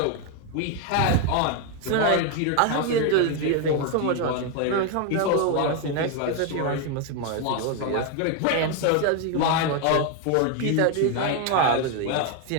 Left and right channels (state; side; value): different; both; correlation 0.01